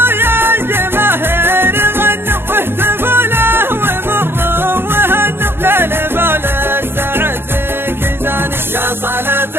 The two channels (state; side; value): late; left; 0.11 ms